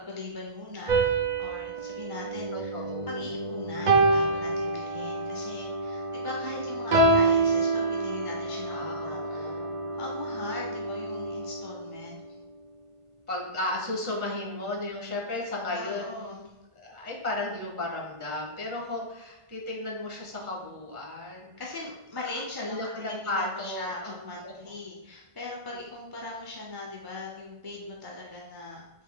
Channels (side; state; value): left; late; 1.5 ms